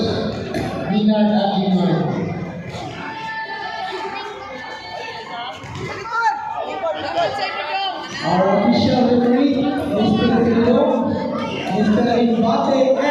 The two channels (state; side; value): identical; both; correlation 1.00